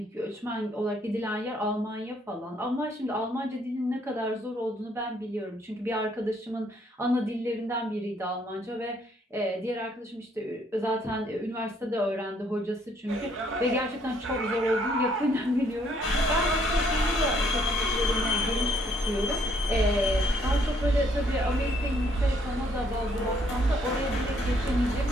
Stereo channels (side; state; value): both; normal; correlation 0.67